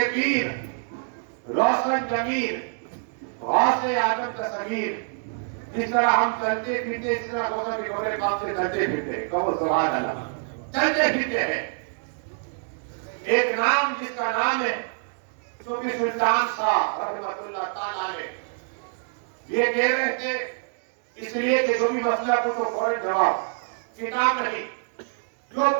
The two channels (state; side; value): silent; left; digital silence